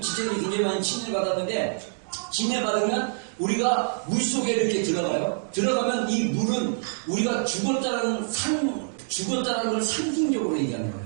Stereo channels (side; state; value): left; silent; digital silence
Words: 지체들이 굉장히 많이 침례 받았는데, 침례 받으면 우리가 물속에 이렇게 들어가요. 들어가면 이 물은 우리가 죽었다는 걸 상징적으로 얘기하는 거예요.